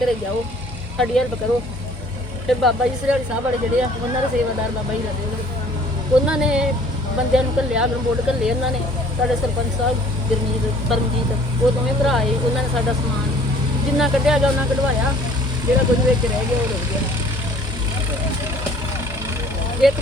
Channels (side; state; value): both; normal; correlation 0.54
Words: ਜਾਓ, ਸਾਡੀ ਹੈਲਪ ਕਰੋ। ਫਿਰ ਬਾਬਾ ਜੀ ਸਰਿਆਲੀ ਸਾਹਿਬ ਵਾਲੇ ਜਿਹੜੇ ਆ, ਉਹਨਾਂ ਦੇ ਸੇਵਾਦਾਰ ਬਾਬਾ ਜੀ ਲੱਗੇ, ਉਹਨਾਂ ਨੇ ਬੰਦਿਆਂ ਨੂੰ ਘੱਲਿਆ, ਗਰਮੋਟ ਘੱਲੇ ਉਹਨਾਂ ਨੇ। ਸਾਡੇ ਸਰਪੰਚ ਸਾਹਿਬ ਗੁਰਮੀਤ, ਪਰਮਜੀਤ, ਉਹ ਦੋਵੇਂ ਭਰਾ ਆਏ। ਉਹਨਾਂ ਨੇ ਸਾਡਾ ਸਮਾਨ ਜਿੰਨਾ ਕੱਢਿਆ ਗਿਆ ਉਹਨਾਂ ਕਢਵਾਇਆ, ਜਿਹੜਾ ਕੁਝ ਵਿੱਚ ਰਹਿ ਗਿਆ ਉਹ ਰੁੜ ਗਿਆ। ਇੱਕ